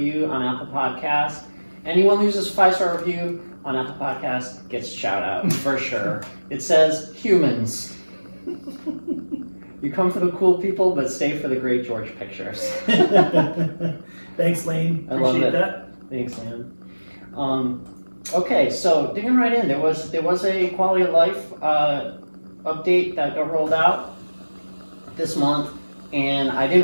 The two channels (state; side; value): inverted; both; correlation -1.00